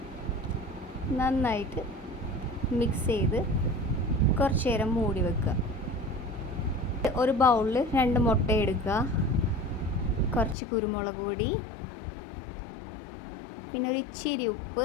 നന്നായിട്ട് മിക്സ് ചെയ്ത് കുറച്ച് നേരം മൂടി വെക്കുക. ഒരു ബൗളിൽ 2 മുട്ട എടുക്കുക, കുറച്ച് കുരുമുളക് പൊടി, പിന്നെ ഒരു ഇച്ചിരി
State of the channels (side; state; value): right; drops out; at 10.6 s